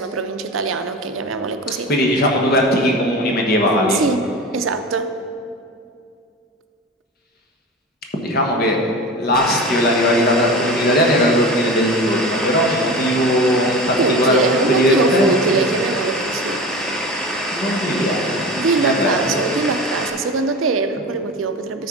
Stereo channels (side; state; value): both; normal; correlation 0.31